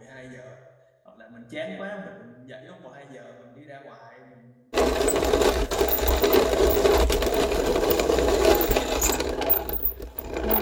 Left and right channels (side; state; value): both; identical; correlation 1.00